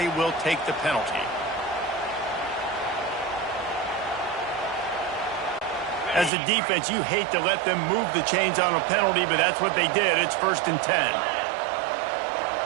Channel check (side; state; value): left; drops out; at 6.3 s